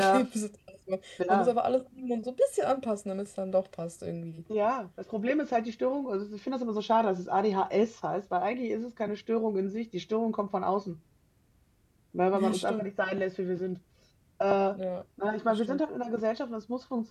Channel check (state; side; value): identical; both; correlation 1.00